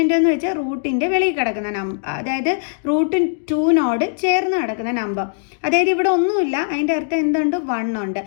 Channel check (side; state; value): right; silent; digital silence